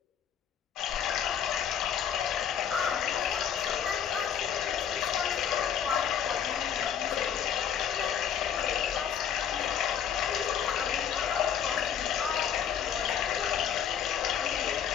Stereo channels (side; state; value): right; quieter; 8.6 dB